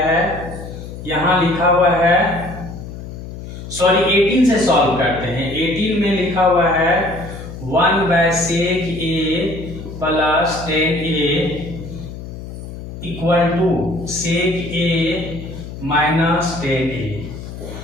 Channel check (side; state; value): left; noise; hum, 11 dB below the sound